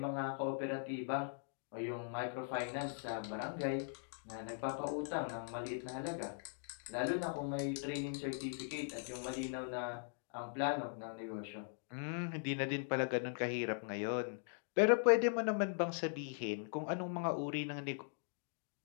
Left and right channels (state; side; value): silent; right; digital silence